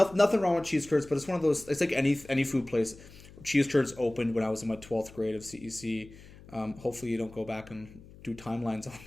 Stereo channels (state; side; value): noise; left; hum, 20 dB below the sound